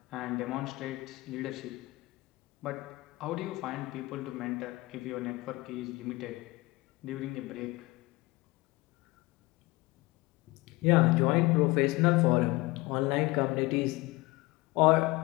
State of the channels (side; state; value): right; quieter; 21.9 dB